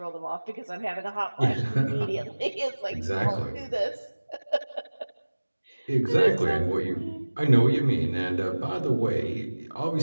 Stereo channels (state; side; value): inverted; both; correlation -1.00